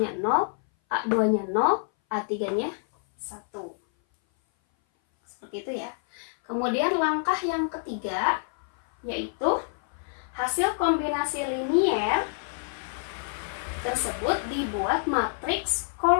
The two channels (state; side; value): silent; right; 58 dB below the other